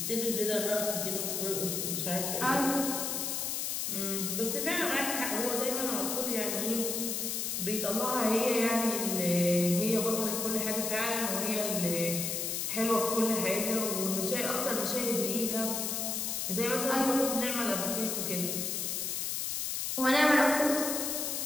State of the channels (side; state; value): left; noise; hiss, 1 dB below the sound